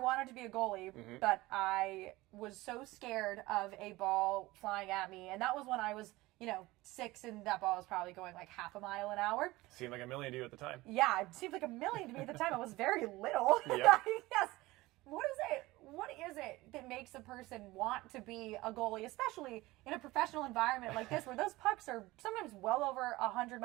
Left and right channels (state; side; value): quieter; left; 19.7 dB